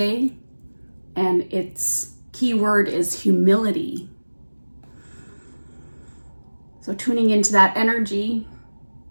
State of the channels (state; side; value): inverted; both; correlation -1.00